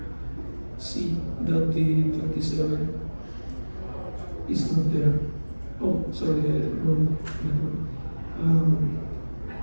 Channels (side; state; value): both; inverted; correlation -1.00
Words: see that the 27 is not there. Oh, sorry, wrong network.